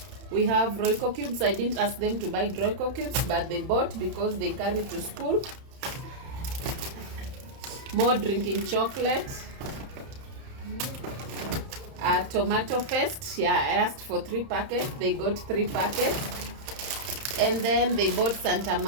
We have Royco cubes. I didn't ask them to buy Royco cubes, but they bought because they carry to school. More drinking chocolate. Tomato paste. Yeah, I asked for 3 packets. They got 3 packets. And then they bought Santa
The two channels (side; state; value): left; late; 31 ms